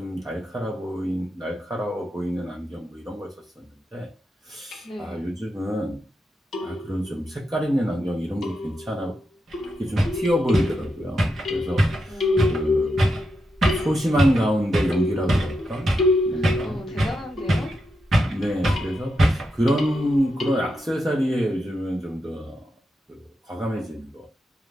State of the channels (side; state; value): both; normal; correlation 0.85